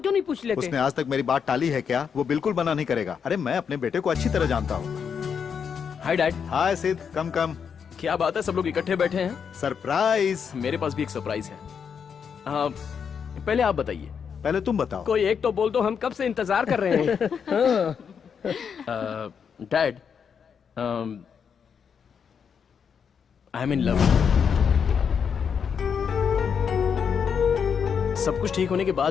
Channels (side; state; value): right; quieter; 6.9 dB